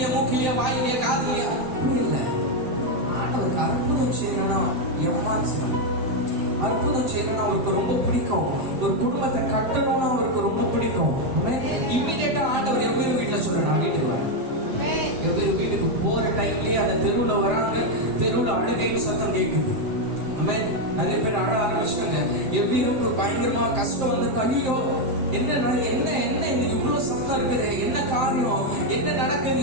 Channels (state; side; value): late; left; 7.7 ms